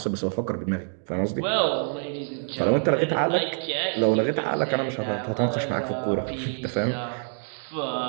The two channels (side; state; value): left; silent; 61 dB below the other